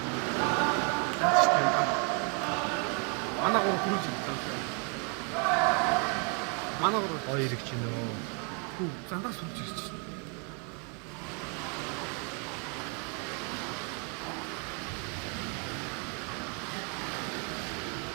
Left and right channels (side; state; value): left; quieter; 34.5 dB